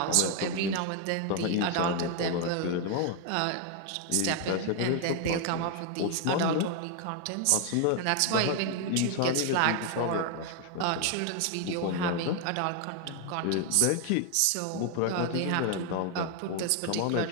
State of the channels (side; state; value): both; different; correlation 0.01